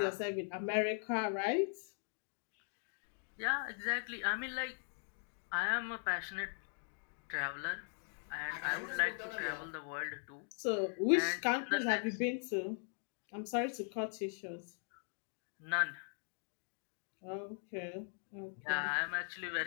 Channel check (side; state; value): right; silent; 51 dB below the other